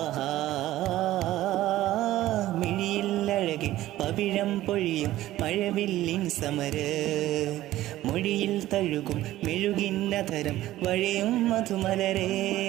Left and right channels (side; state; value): left; quieter; 15.1 dB